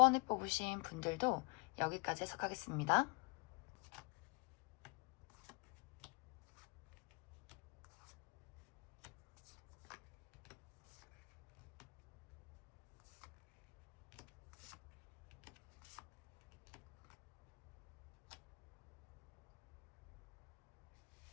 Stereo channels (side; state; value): right; quieter; 32.1 dB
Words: 뽑으신 분들도 여기까지 해석하겠습니다.